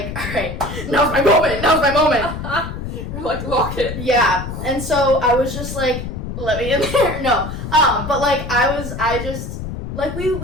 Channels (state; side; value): noise; left; rumble, 7 dB below the sound